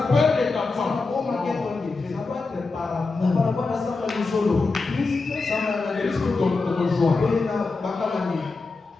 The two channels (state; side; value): quieter; right; 3.9 dB